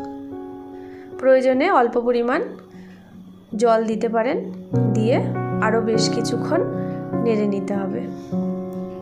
প্রয়োজনে অল্প পরিমাণ জল দিতে পারেন, দিয়ে আরও বেশ কিছুক্ষণ নেড়ে নিতে হবে।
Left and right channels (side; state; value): both; identical; correlation 1.00